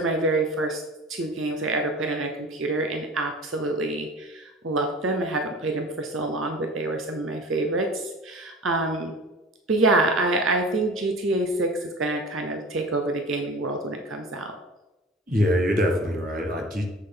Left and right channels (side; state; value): both; normal; correlation 0.39